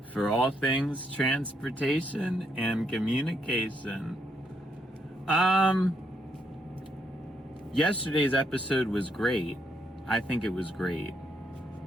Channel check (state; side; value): normal; both; correlation 0.76